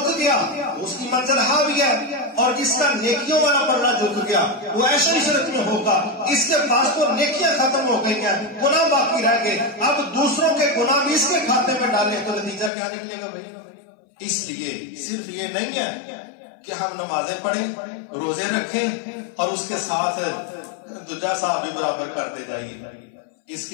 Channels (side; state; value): right; drops out; at 12.7 s